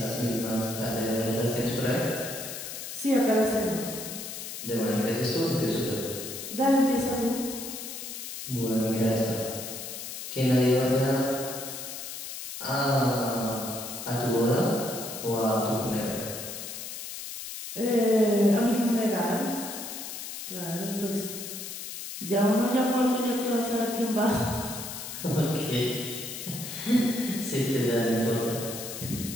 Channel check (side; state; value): left; noise; hiss, 8 dB below the sound